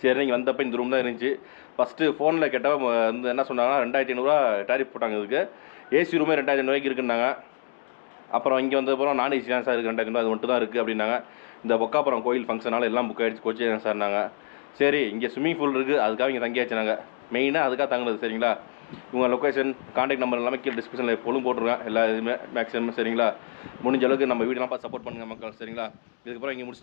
நீங்கள் வந்தப்போ இந்த ரூம் தான் இருந்துச்சு. ஃபஸ்ட்டு ஃபோனில் கேட்டப்போ வந்து என்ன சொன்னாங்கன்னா 2500 டேரிஃப் போட்டாங்க. இதுக்கு ஏசி ரூமே 2500 இருக்குன்னாங்க. அப்புறம் இங்கே வந்தப்புறம் நான் ஏசி தான் சார் இருக்குது 2500 அது மட்டும் தான் இருக்குது அப்படின்னாங்க. இந்த பொக்காப்புறம் கோயில் ஃபங்க்ஷனால் எல்லாம் புக் ஆகிடுச்சு, கோச்சி சார்னாங்க. சரி இங்கே ஸ்விம்மிங் பூல் இருக்குது, அதுக்காக இங்கே தங்கியாச்சு நாங்கள். மெயினாக அதுக்காக தங்குனது, சரிங்களா. உங்கள் லொக்கேஷன் கான்டாக்ட் நம்பர் எல்லாமே கீழே டிஸ்கிரிப்ஷனில் எப்போதும் போட்டுருவேன் எல்லா இதுவுமே மேக்ஸிமம், சரிங்களா. முடிஞ்ச அளவுக்கு நம்ம வீடெல்லாம் பார்த்து சப்போர்ட் பண்ணுங்கள் மக்கள், சரிங்களா. இதுக்கப்புறம் இங்கே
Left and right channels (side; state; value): right; silent; digital silence